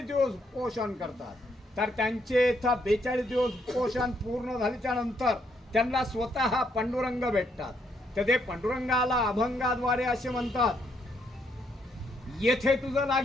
दिवस पोषण करतात। तर त्यांचे इथं 42 दिवस पोषण पूर्ण झाल्याच्या नंतर त्यांना स्वतः पांडुरंग भेटतात। तर ते पांडुरंगाला अभंगाद्वारे असे म्हणतात, येथे तुझं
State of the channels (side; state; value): both; normal; correlation 0.74